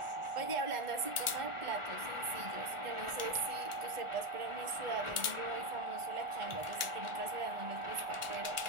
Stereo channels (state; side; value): late; left; 1.4 ms